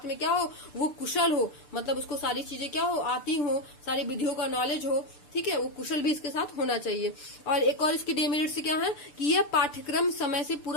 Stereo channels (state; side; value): late; right; 6.8 ms